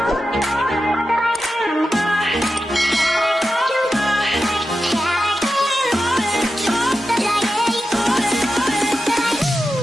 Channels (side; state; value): both; normal; correlation 0.91